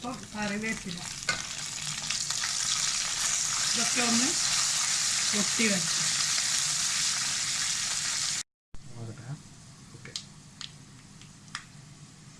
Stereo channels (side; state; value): both; identical; correlation 1.00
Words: കറിവേപ്പില. ഇതൊക്കെ ഒന്ന് പൊട്ടി വെച്ചു.